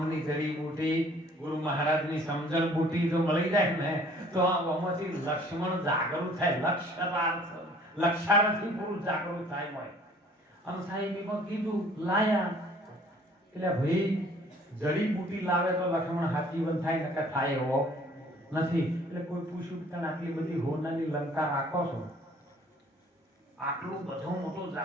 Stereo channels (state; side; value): normal; both; correlation 0.55